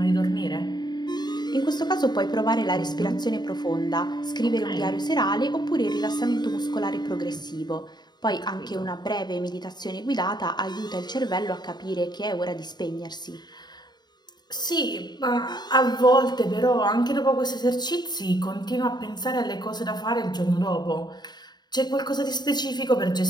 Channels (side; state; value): right; late; 0.20 ms